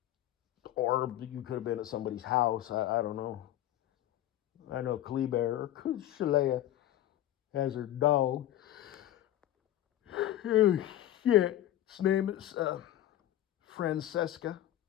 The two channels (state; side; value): quieter; right; 13.1 dB